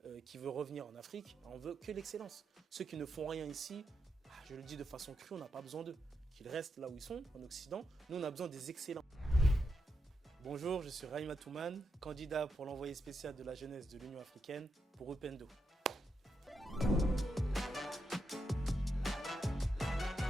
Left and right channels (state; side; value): normal; both; correlation 0.84